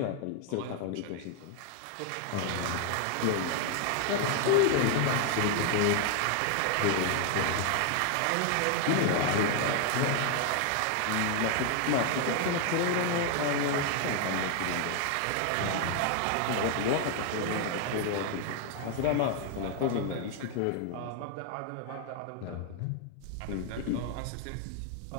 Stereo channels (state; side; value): different; both; correlation 0.00